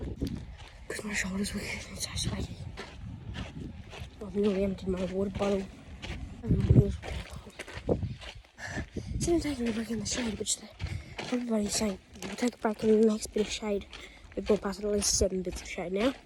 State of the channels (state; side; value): identical; both; correlation 1.00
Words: Because my shoulders were getting so sweaty. I've nearly emptied my water bottle. And my wheels were getting cold. Instead of taking a break in the shade, which everybody's saying, we'll take a break in the next bit of shade. We've gone past at least 7 bits of shade now.